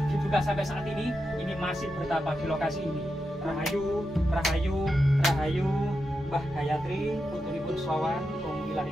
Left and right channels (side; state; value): both; normal; correlation 0.87